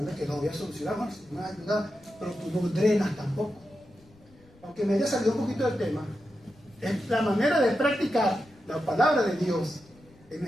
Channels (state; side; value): noise; left; rumble, 28 dB below the sound